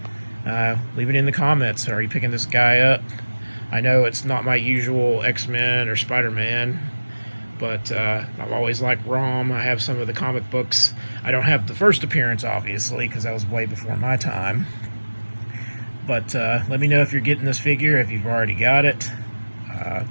Leave it in the comments. Are you picking this guy up? I know it's not my usual X-Men or Spider-Man, but I've always liked ROM. I have some of the comic books. I don't have the first appearance, obviously, because that was way before my time. But let me know if you're getting this figure, if you've already got it.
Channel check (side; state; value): both; inverted; correlation -1.00